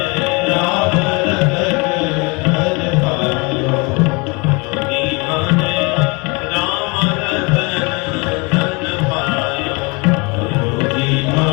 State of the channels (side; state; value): right; quieter; 28.6 dB